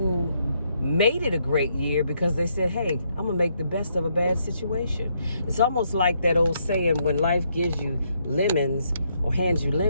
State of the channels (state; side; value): inverted; both; correlation -0.75